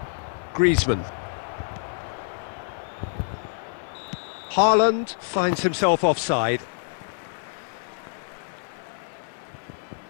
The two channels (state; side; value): silent; right; 55 dB below the other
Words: Griezmann. Haaland finds himself offside.